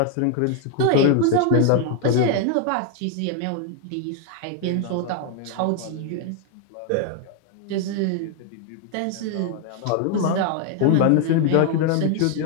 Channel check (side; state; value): both; different; correlation 0.01